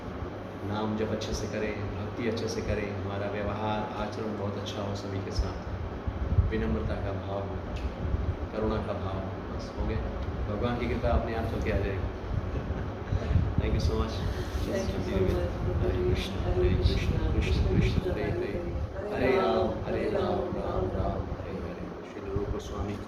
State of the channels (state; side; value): identical; both; correlation 1.00